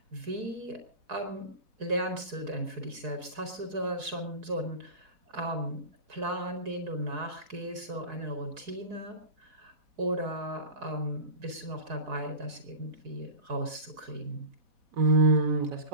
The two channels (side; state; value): left; late; 4.7 ms